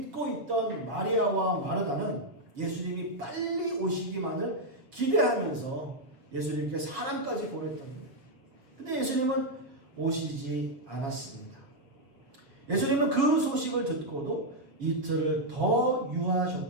있던 마리아와 마르다는 예수님이 빨리 오시기만을 기대하면서 예수님께 사람까지 보냈던 거예요. 근데 예수님은 오시지 않았습니다. 예수님은 그 소식을 듣고도 이틀을 더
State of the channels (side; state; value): left; late; 7.2 ms